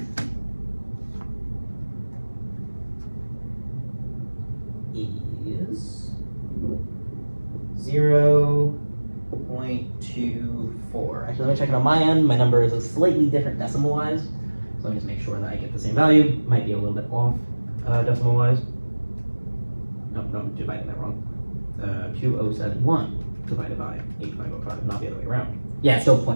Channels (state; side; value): inverted; both; correlation -1.00